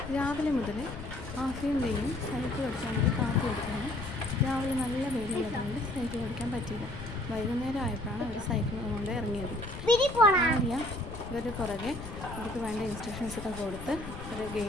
രാവിലെ മുതൽ ആഫിയും സൈക്കിൾ ഓടിക്കാൻ വേണ്ടി കാത്തു കൊടുക്കുകയാണ്. രാവിലെ നല്ല വെയിലുള്ളതുകൊണ്ട് സൈക്കിൾ ഓടിക്കാൻ പറ്റിയില്ല. വൈകുന്നേരം ആയപ്പോഴാണ് അവർ സൈക്കിൾ കൊണ്ട് ഇറങ്ങിയത്. ആര്യ ഇവരുടെ പുറകെ ഇവർക്ക് വേണ്ട ഇൻസ്ട്രക്ഷൻസൊക്കെ കൊടുത്ത് ഒരു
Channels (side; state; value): left; noise; rumble, 10 dB below the sound